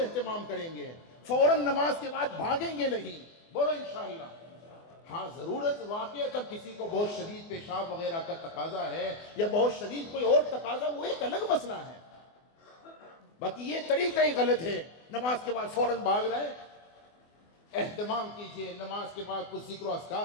کریں گے، فوراً نماز کے بعد بھاگیں گے نہیں. بولو انشاءاللہ. ہاں ضرورت واقعہ کسی کو بہت شدید پیشاب وغیرہ کا تقاضا ہے یا بہت شدید کوئی اور تقاضا، وہ ایک الگ مسئلہ ہے، باقی یہ طریقہ ہی غلط ہے، نماز کے بعد فوراً بھاگ رہے۔ اہتمام کیجئے، نماز کے بعد کچھ ذکر و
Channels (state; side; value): late; right; 24 ms